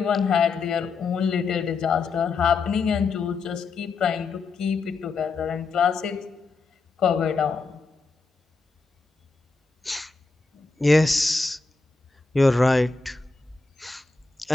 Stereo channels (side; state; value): right; quieter; 4.2 dB